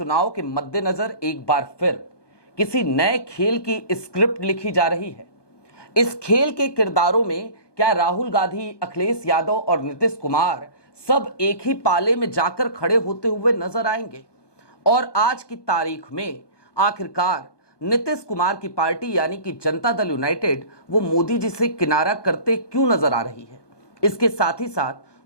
के मद्देनजर एक बार फिर किसी नए खेल की स्क्रिप्ट लिखी जा रही है? इस खेल के किरदारों में क्या राहुल गांधी, अखिलेश यादव और नीतीश कुमार सब एक ही पाले में जाकर खड़े होते हुए नजर आएंगे? और आज की तारीख में आखिरकार नीतीश कुमार की पार्टी यानी कि जनता दल यूनाइटेड वो मोदी जी से किनारा करते क्यों नजर आ रही है? इसके साथ ही साथ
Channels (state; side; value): late; right; 1.2 ms